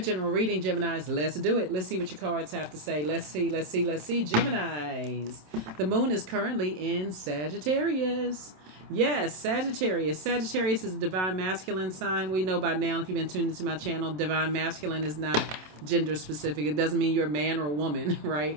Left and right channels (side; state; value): left; late; 27 ms